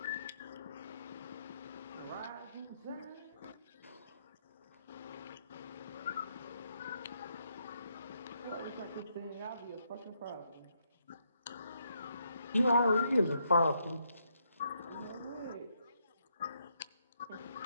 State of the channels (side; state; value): both; inverted; correlation -0.77